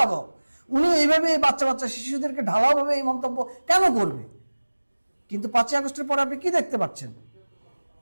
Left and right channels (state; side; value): inverted; both; correlation -1.00